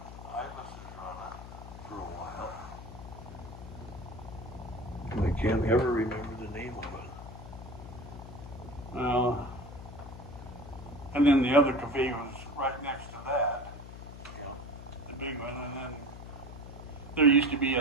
has run it for a while. And I can't ever remember the name of it. And then the other cafe was right next to that, Yeah. the big one, and then there used to be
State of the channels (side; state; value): left; noise; hum, 13 dB below the sound